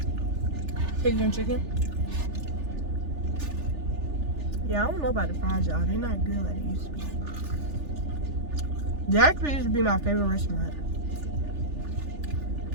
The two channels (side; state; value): left; late; 3.4 ms